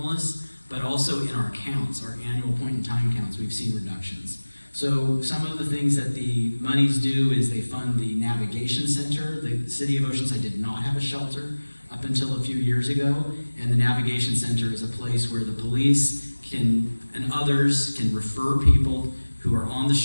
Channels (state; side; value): inverted; both; correlation -1.00